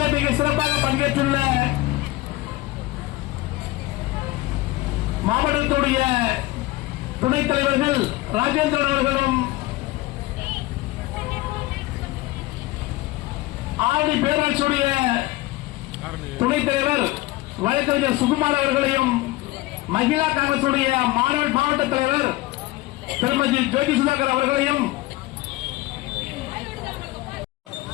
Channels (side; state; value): right; quieter; 18.9 dB